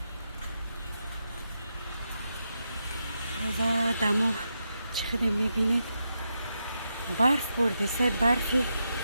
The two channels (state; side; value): inverted; both; correlation -0.85